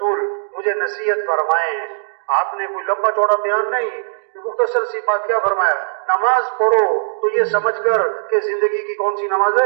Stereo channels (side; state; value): left; silent; digital silence